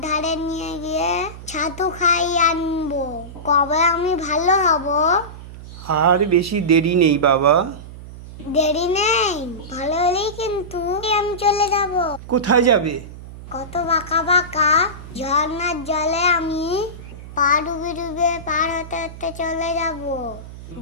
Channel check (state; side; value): noise; right; hum, 14 dB below the sound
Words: ধারে নিয়ে গিয়ে ছাতু খাইয়ে আনবো। কবে আমি ভালো হব? আর বেশি দেরি নেই বাবা। দেরি নেই, ভালো হলেই কিন্তু আমি চলে যাব। কোথায় যাবে? কত বাঁকা বাঁকা ঝর্ণার জলে আমি পা ডুবে ডুবে পার হতে হতে চলে যাব।